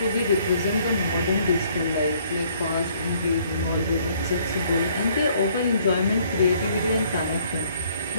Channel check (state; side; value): inverted; both; correlation -0.63